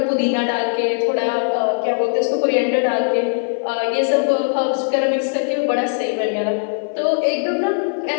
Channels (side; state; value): right; silent; 56 dB below the other